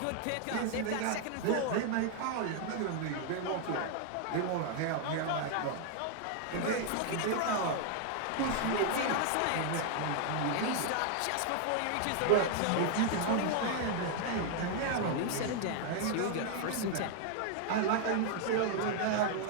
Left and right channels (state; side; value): different; both; correlation 0.00